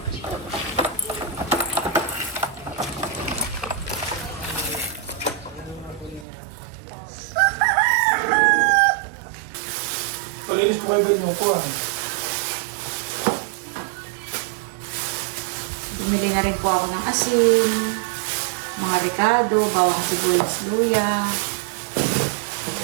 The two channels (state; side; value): drops out; left; at 6.2 s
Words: Palinis po kayo ganyan po ah. Bumili na rin po ako ng asin, mga ricado, bawang sibuyas, luya.